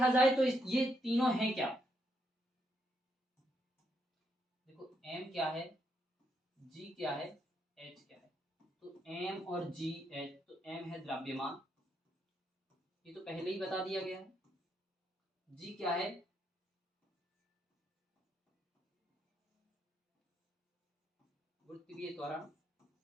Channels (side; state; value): both; normal; correlation 0.77